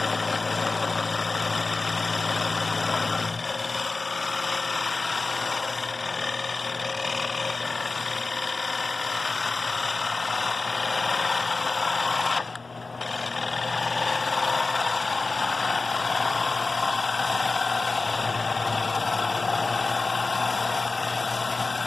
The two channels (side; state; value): right; quieter; 3.7 dB